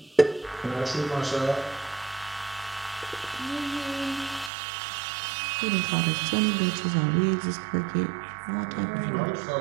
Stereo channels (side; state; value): left; drops out; at 4.5 s